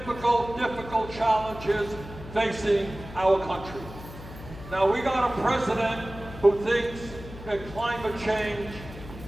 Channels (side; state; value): left; noise; hum, 14 dB below the sound